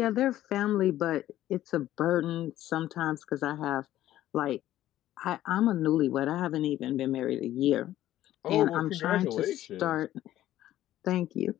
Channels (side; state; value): right; quieter; 13.6 dB